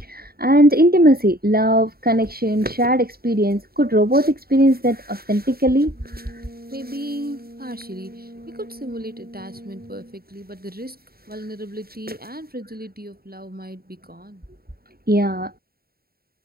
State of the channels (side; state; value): left; late; 0.44 ms